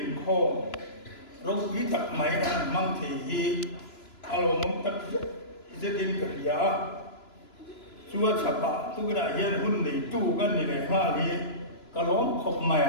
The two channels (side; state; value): right; late; 2.9 ms